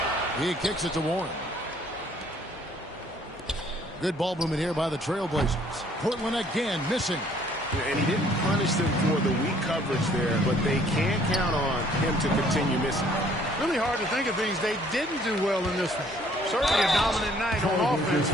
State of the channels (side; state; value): both; normal; correlation 0.60